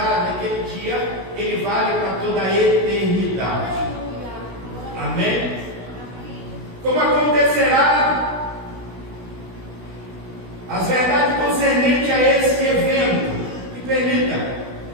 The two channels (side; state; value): left; late; 16 ms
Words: naquele dia, ele vale para toda a eternidade. Amém? Como acontecerá as verdades concernentes a esse evento? Me permita,